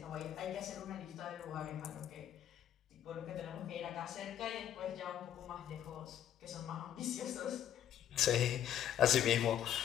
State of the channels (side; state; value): right; quieter; 10.4 dB